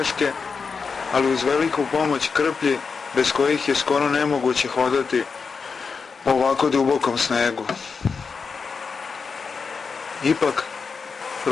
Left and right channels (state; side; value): quieter; right; 5.2 dB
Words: ali uz veliku pomoć krplji, bez kojih je skoro nemoguće hodati po ovako dubokom snegu. Ipak,